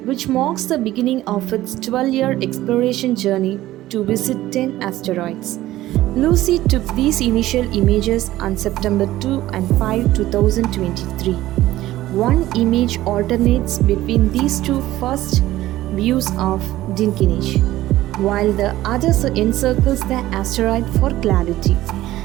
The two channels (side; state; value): left; quieter; 15.5 dB